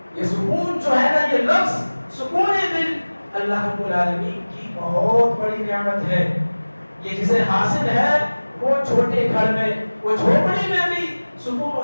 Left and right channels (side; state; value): both; inverted; correlation -1.00